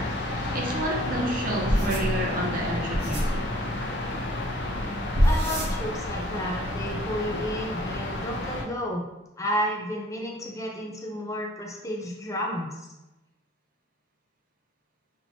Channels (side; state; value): both; normal; correlation 0.56